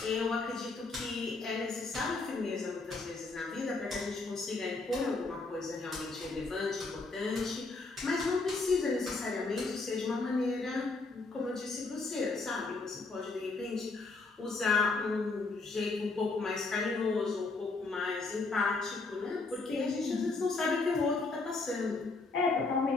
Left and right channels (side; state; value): right; quieter; 3.7 dB